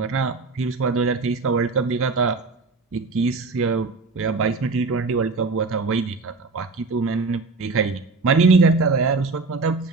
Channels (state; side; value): quieter; left; 3.9 dB